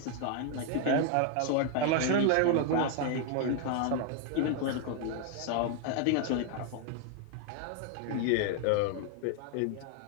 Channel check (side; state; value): both; different; correlation 0.00